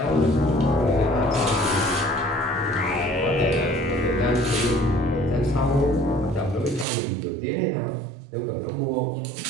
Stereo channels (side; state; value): left; drops out; at 6.9 s